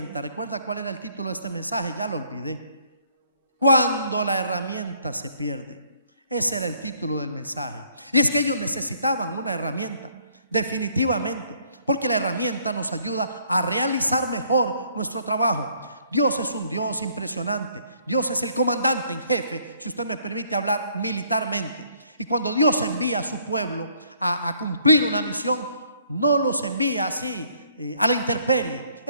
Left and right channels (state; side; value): inverted; both; correlation -0.64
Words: ¿Recuerda cuál era el título de este mensaje? Ya lo olvidé. Cuando la herramienta se pierde. Ese era el título del mensaje. Y es que ellos necesitaban una herramienta, definitivamente, porque la herramienta nos ayuda a realizar mejor nuestro trabajo. Dios es un Dios impresionante. Dios es el comandante en jefe, si usted me permite hablar militarmente. Y cuando Dios envía a su pueblo a cumplir una misión, no los envía así a la intemperie.